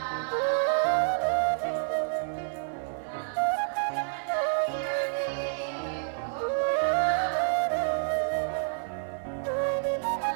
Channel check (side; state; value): left; silent; 59 dB below the other